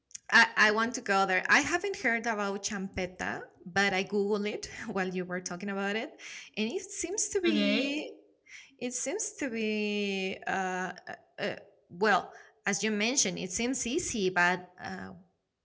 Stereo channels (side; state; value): both; identical; correlation 1.00